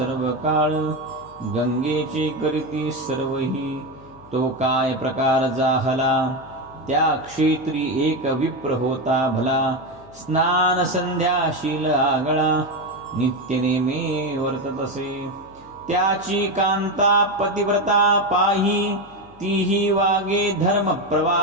काळ गंगेचे करीती सर्वही तो काय प्रकार जाहला त्या क्षेत्री एक विप्र होता भला स्नान संध्या शील आगळा नित्य नेमे वर्तत असे त्याची कांता पतिव्रता पाही तीही वागे धर्म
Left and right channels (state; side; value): noise; left; hum, 25 dB below the sound